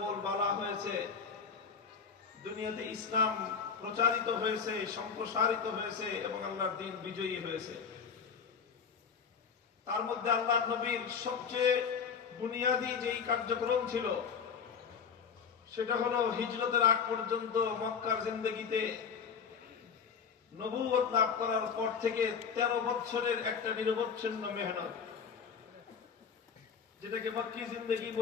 হয়েছে, দুনিয়াতে ইসলাম প্রচারিত হয়েছে, সম্প্রসারিত হয়েছে এবং আল্লাহর দ্বীন বিজয়ী হয়েছে। তার মধ্যে আল্লাহ নবীর সবচেয়ে বুনিয়াদী যেই কার্যক্রম ছিল সেটা হলো হিজরতের আগ পর্যন্ত মক্কার জিন্দেগিতে নবুয়ত লাভ করার পর থেকে 13 বছরের একটা নিরবচ্ছিন্ন মেহনত, যেটাকে মক্কি জিন্দেগি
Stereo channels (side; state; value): right; quieter; 6.2 dB